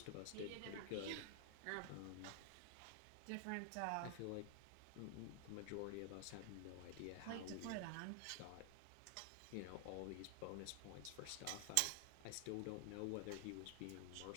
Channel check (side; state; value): both; different; correlation 0.00